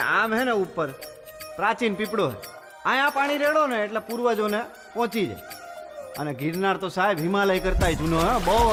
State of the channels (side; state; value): both; identical; correlation 1.00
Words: આમ હે ને ઉપર પ્રાચીન પીપળો હે. અહીંયા પાણી રેડો ને એટલે પૂર્વજોને પહોંચી જાય. અને ગિરનાર તો સાહેબ હિમાલય કરતાય જૂનો હે, બહુ